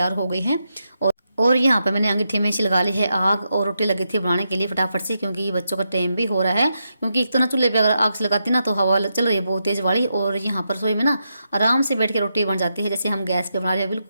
हो गई है। और और यहाँ पे मैंने अंगीठी में लगा ली है आग और रोटी लगी थी बनाने के लिए फटाफट से, क्योंकि बच्चों का टाइम भी हो रहा है। क्योंकि एक तो ना चूल्हे पे अगर आग से लगाती ना तो हवा चल रही है बहुत तेज़ वाली, और यहाँ पर रसोई में ना आराम से बैठ के रोटी बन जाती है जैसे हम गैस पे बना रहे हैं,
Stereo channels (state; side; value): inverted; both; correlation -0.84